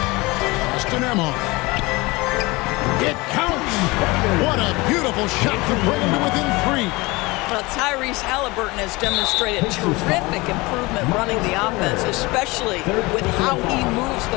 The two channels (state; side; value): quieter; right; 23.1 dB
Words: Austin Emma. It counts. What a beautiful shot to bring him to within 3. Well, Tyrese Halliburton has demonstrated terrific improvement running the offense, especially with how he moves